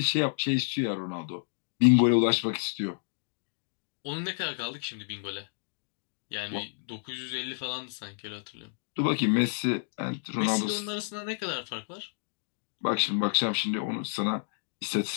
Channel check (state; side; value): silent; right; digital silence